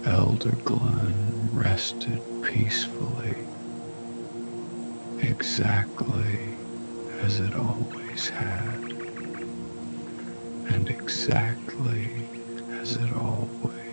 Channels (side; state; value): both; inverted; correlation -1.00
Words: Elder Glen rested peacefully, exactly as it always had, and exactly as it